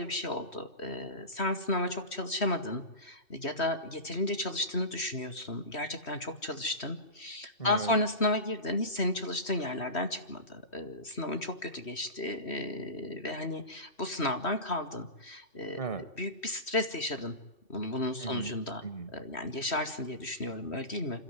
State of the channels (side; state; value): right; late; 3.1 ms